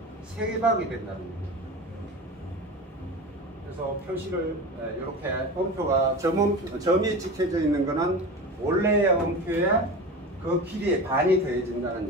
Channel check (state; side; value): normal; both; correlation 0.29